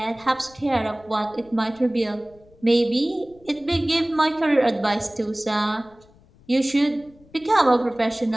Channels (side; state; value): left; noise; rumble, 28 dB below the sound